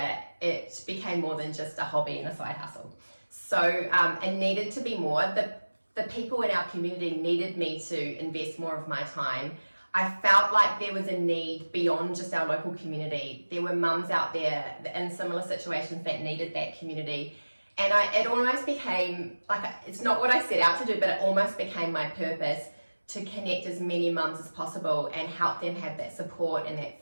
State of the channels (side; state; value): both; inverted; correlation -1.00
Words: it became more than just a hobby and a side hustle. So it needed to be more. The people in our community needed me to invest more of my time. I felt like there was a need beyond just our local community. There were mums out there in similar situations that needed that community. And it almost became, like, it's not what I set out to do, but it almost became my purpose to connect as many mums as possible and help them have that support and that